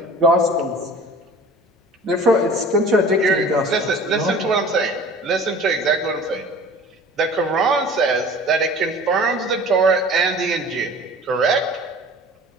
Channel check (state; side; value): normal; both; correlation 0.44